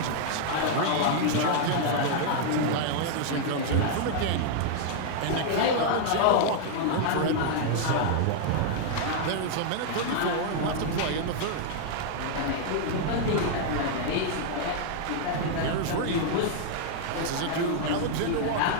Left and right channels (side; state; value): both; different; correlation -0.01